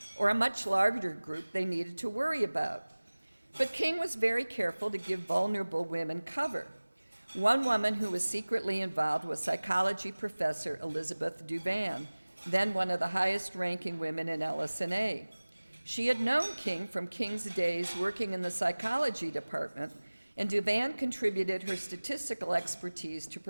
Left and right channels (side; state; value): both; inverted; correlation -1.00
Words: or a much larger group they needed to worry about. But King was very careful to give vulnerable women cover. One woman who was secretly involved was psychology professor Elizabeth Duvan, then one of the highest-ranking women in LS&A. She had known King from King's days working in the psychology department, and Duvan contributed her statistical expertise to